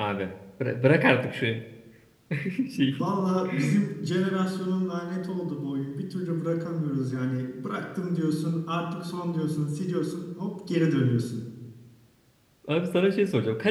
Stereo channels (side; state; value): both; identical; correlation 1.00